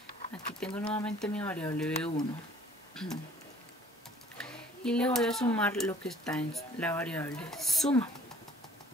aquí tengo nuevamente mi variable B1 y le voy a sumar lo que está en la variable suma.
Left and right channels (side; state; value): both; normal; correlation 0.55